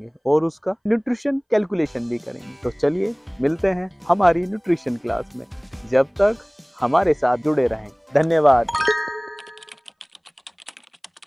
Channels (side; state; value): both; identical; correlation 1.00